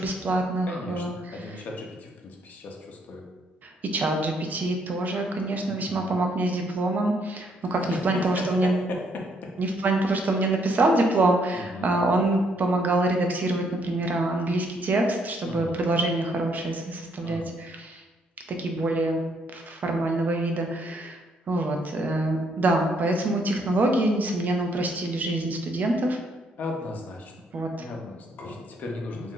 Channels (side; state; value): both; normal; correlation 0.71